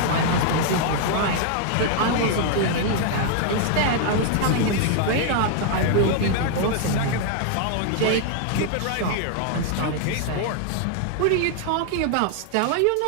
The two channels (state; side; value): different; both; correlation 0.00